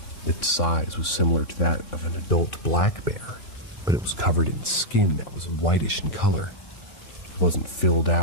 Its size was similar to that of an adult black bear, but it was covered in skin that was whitish in color. It wasn't filled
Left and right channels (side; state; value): right; late; 3.6 ms